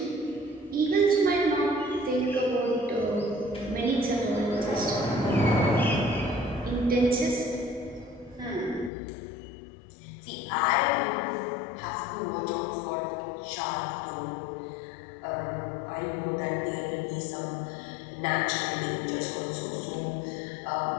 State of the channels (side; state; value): right; drops out; at 8.9 s